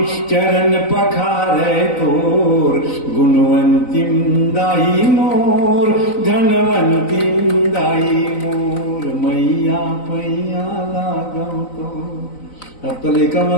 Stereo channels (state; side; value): late; right; 3.9 ms